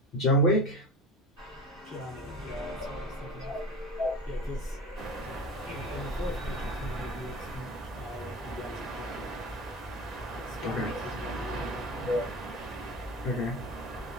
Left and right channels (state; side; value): normal; both; correlation 0.31